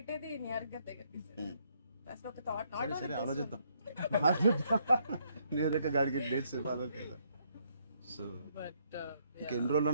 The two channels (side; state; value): both; inverted; correlation -0.71